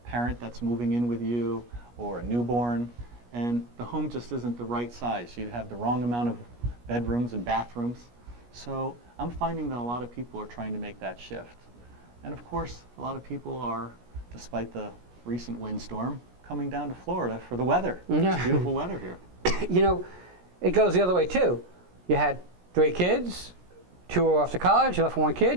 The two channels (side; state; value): left; late; 17 ms